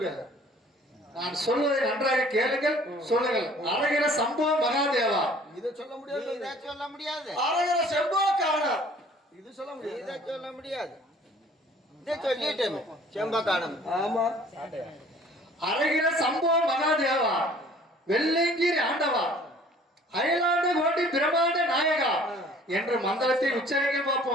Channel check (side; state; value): both; normal; correlation 0.53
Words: நான் சொல்வதை நன்றாக கேளுங்கள், சொல்லுங்கள். அரகிற சம்போ மகாதேவா. இதை சொல்ல முடியாது, இதை சொல்ல முடியாது. அரகிற செம்போ காணா, இது சொல்ல முடியாது. இதை சொல்ல முடியாது. இதை சொல்லிட்டேன் செம்பக்கானம். ஆமா, அரகிற சம்போ மகாதேவா, வெள்ளைங்கிரி ஆண்டவா, அயலாண்ட கோட்டி பிரமாண்ட நாயகா என்று மந்திரத்தை உச்சரிக்க